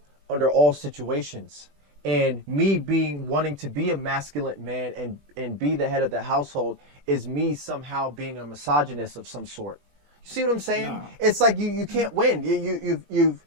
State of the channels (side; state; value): left; late; 20 ms